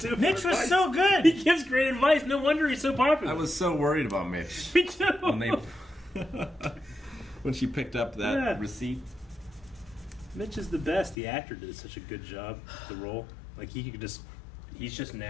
for Mitch was advice. so good. He gives great advice. No wonder he's so popular. I was so worried about Mitch Me too. when they when she picked up that Yeah. receipt. Mitch is the best. The actor did such a good job with the role. Like he's just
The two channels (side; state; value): right; drops out; at 11.2 s